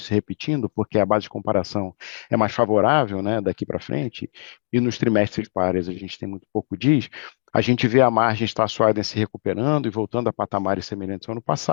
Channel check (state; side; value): silent; right; digital silence